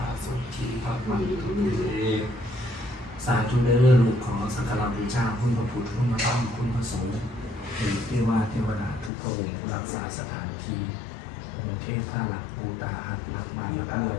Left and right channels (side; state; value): right; drops out; at 9.1 s